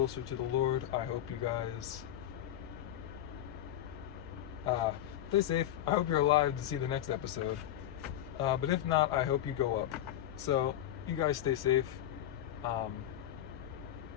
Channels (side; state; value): right; quieter; 12.0 dB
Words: to the Lord. I hope you guys stay safe. I hope you're alive to see the next episode. But if not, I hope you go up. So you guys stay safe. God